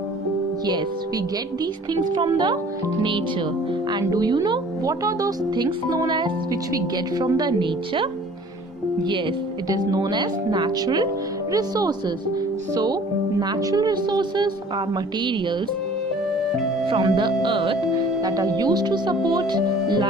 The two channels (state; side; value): normal; both; correlation 0.50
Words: Yes, we get these things from the nature. And do you know what are those things known as which we get from the nature? Yes, it is known as natural resources. So, natural resources are materials from the earth that are used to support